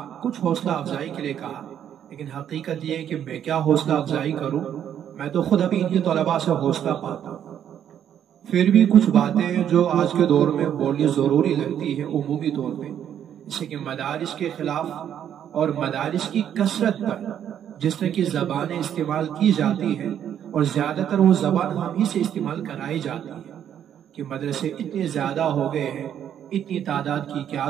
کچھ حوصلہ افزائی کے لیے کہا، لیکن حقیقت یہ ہے کہ میں کیا حوصلہ افزائی کروں، میں تو خود ابھی ان کے طلباء سے حوصلہ پاتا ہوں۔ پھر بھی کچھ باتیں جو آج کے دور میں بولنی ضروری لگتی ہے عمومی طور پہ، جیسے کہ مدارس کے خلاف اور مدارس کی کثرت پر جس طرح کی زبانیں استعمال کی جاتی ہیں، اور زیادہ تر وہ زبان ہم ہی سے استعمال کرائی جاتی ہے کہ مدرسے اتنے زیادہ ہو گئے ہیں، اتنی تعداد کی کیا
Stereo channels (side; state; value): left; quieter; 9.6 dB